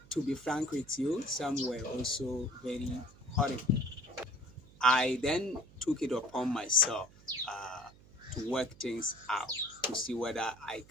to be frank with you, some were also very horrible. I then took it upon myself to work things out to see whether I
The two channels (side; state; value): right; noise; hum, 23 dB below the sound